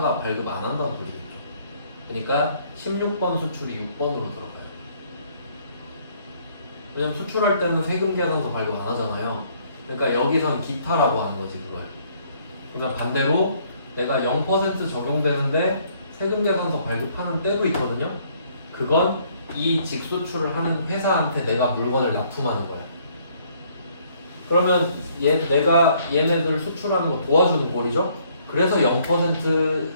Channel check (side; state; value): both; inverted; correlation -0.64